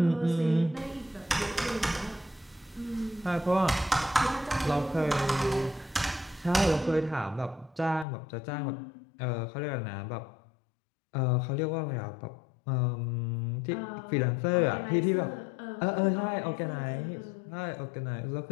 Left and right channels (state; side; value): drops out; right; at 8.1 s